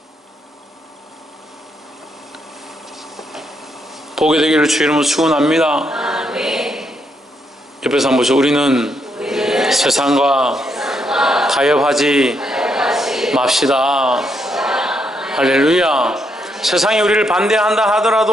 보게 되기를 주의 이름으로 축원합니다. 옆에서 한번 보시죠. 우리는 세상과 타협하지 맙시다. 할렐루야. 세상이 우리를 반대한다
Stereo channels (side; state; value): both; normal; correlation 0.77